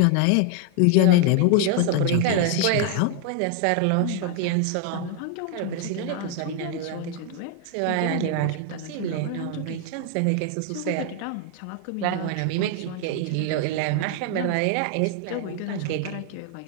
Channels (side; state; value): both; different; correlation 0.00